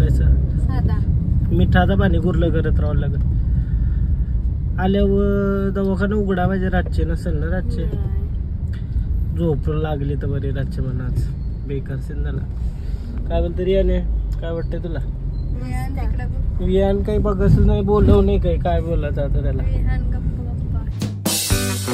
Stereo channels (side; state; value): both; identical; correlation 1.00